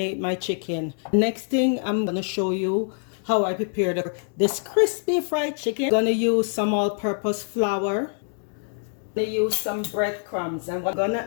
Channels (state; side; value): silent; right; 57 dB below the other